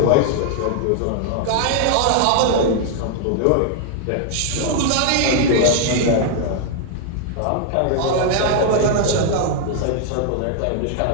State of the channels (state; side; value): different; both; correlation 0.00